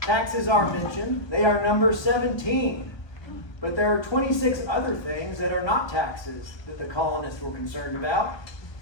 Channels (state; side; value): late; right; 1.2 ms